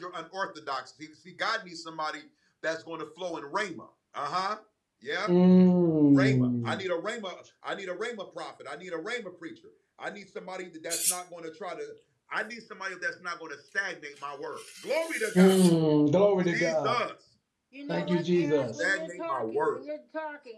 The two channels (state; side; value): identical; both; correlation 1.00